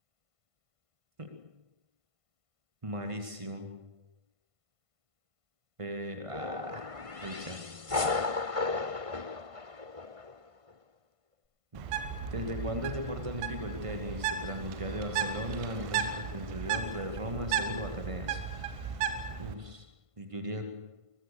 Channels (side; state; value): left; late; 1.5 ms